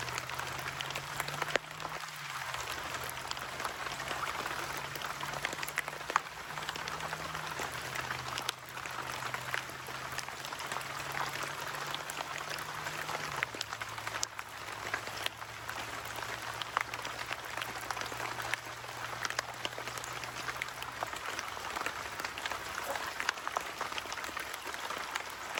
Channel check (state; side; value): identical; both; correlation 1.00